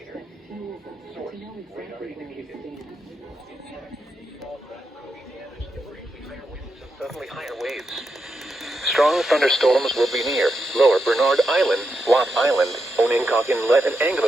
Suddenly higher waves. Strong thunderstorms will be near Lower Bernard Island, Watt Island, Onencock Inlet, and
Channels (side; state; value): both; normal; correlation 0.85